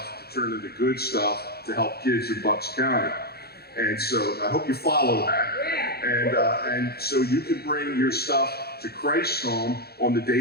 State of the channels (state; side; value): late; right; 0.46 ms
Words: to turn into good stuff to help kids in Bucks County. And so I hope you follow that. And so you can bring your stuff to Christ Home on the